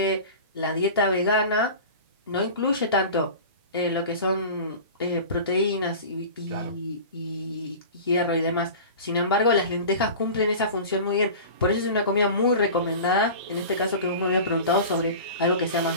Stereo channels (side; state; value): both; inverted; correlation -0.36